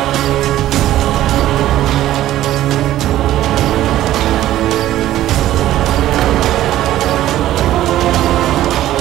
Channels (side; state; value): left; quieter; 13.8 dB